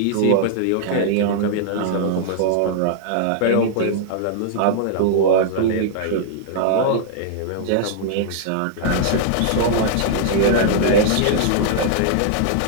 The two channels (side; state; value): both; different; correlation -0.01